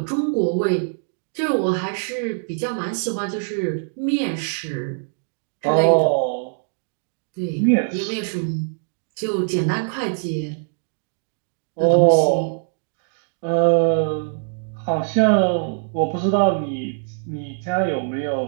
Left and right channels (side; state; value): left; silent; digital silence